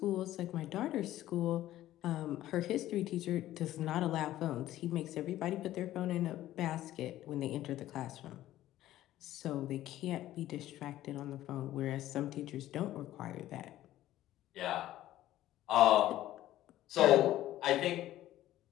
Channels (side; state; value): right; quieter; 14.1 dB